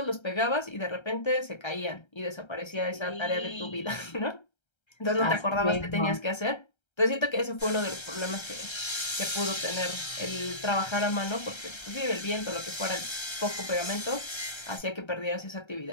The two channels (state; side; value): late; right; 1.3 ms